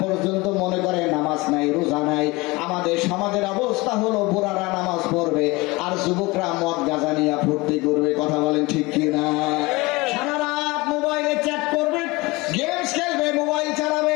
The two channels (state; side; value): quieter; right; 23.2 dB